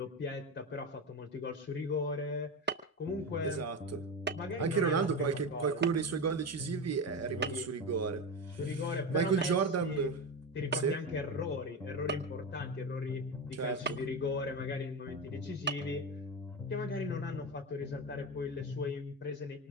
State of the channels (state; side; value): normal; both; correlation 0.19